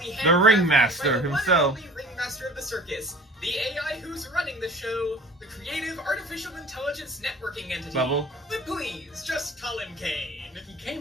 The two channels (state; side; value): normal; both; correlation 0.45